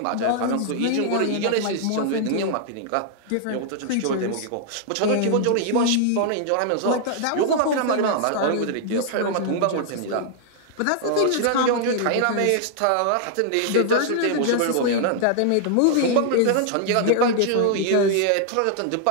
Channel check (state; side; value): different; both; correlation -0.01